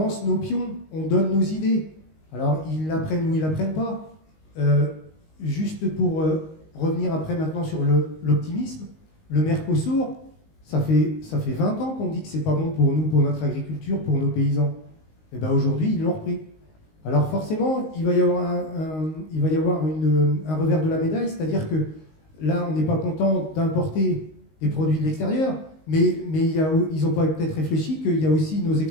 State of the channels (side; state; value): right; late; 19 ms